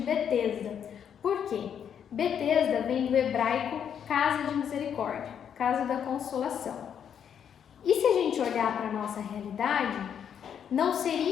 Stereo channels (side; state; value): right; quieter; 8.4 dB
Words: Por quê? Betesda vem do hebraico casa de misericórdia, casa da consolação. E se a gente olhar para a nossa realidade, não